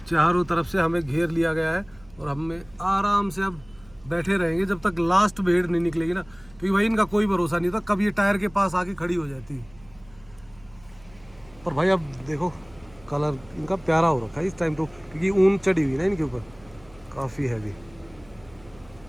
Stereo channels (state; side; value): noise; right; hum, 25 dB below the sound